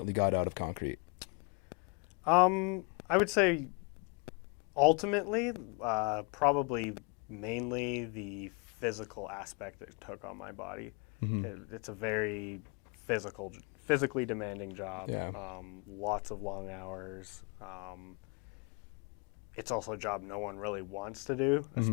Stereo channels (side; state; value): right; quieter; 33.5 dB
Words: got out of concrete? I would say ultimately, probably mainly the physical aspect it took on my body. It's a very physically demanding job. Yeah. Lots of long hours. It's also a job no one really wants to do,